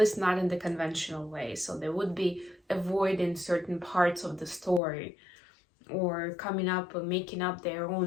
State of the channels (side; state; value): right; drops out; at 4.8 s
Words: not in the conventional way. So they would be avoiding certain parts of the story, or coming up or making up their